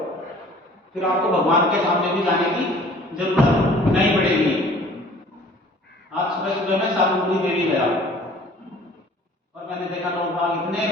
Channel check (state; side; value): normal; both; correlation 0.51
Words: फिर आपको भगवान के सामने भी जाने की जरूरत नहीं पड़ेगी। आज सुबह सुबह मैं सालुमपुरी देवी गया और मैंने देखा लोग बाग इतने